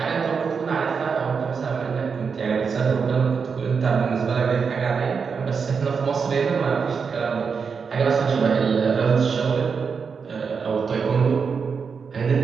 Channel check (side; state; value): left; quieter; 5.7 dB